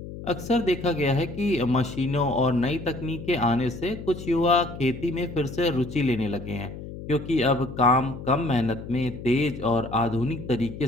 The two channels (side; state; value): left; noise; hum, 11 dB below the sound